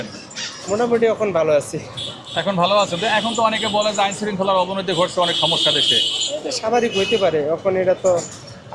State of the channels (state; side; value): identical; both; correlation 1.00